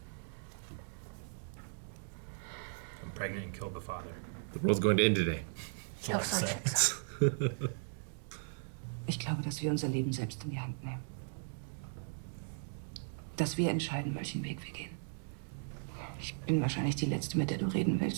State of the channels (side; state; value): left; silent; digital silence